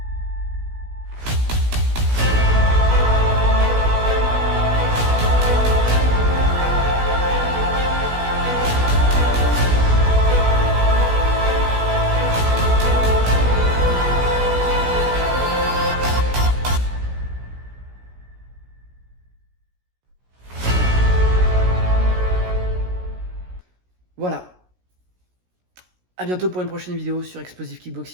Voilà. À bientôt pour une prochaine vidéo sur Explosive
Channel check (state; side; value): late; left; 16 ms